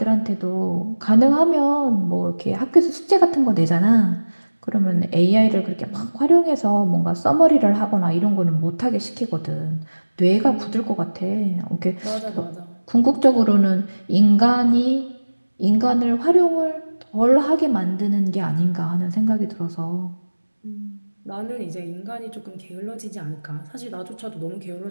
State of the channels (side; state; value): both; inverted; correlation -1.00